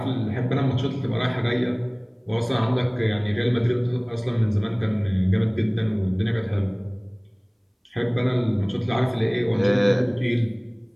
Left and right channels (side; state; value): both; identical; correlation 1.00